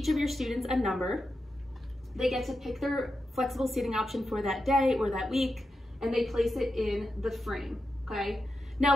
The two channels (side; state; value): both; normal; correlation 0.89